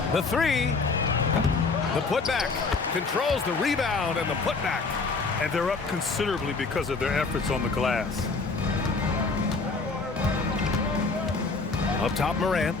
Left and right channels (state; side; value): quieter; right; 4.1 dB